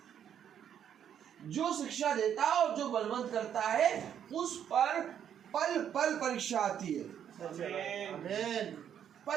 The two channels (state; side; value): quieter; left; 9.2 dB